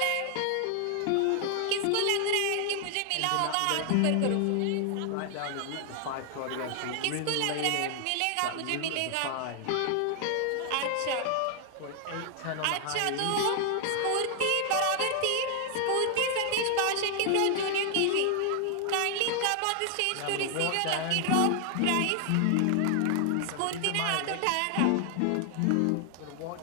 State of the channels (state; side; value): different; both; correlation 0.00